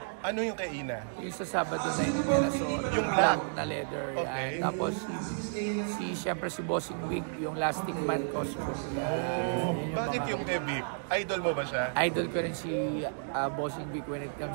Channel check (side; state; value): left; silent; digital silence